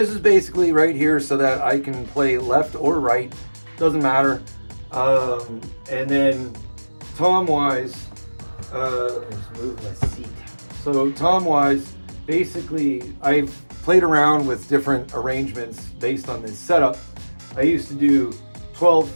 is basically right here so that I can play left or right, doesn't matter. And then tom-wise, let's move my seat. So tom-wise, basically I've played around with different arrangements based on this setup. I used to do 12,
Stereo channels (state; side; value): inverted; both; correlation -1.00